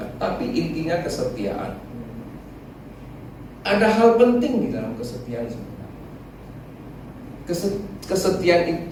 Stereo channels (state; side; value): identical; both; correlation 1.00